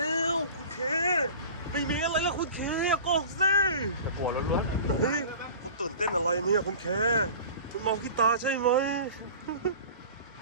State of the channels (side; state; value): both; inverted; correlation -0.39